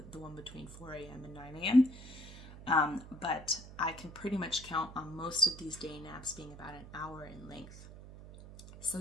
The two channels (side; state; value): right; noise; hum, 15 dB below the sound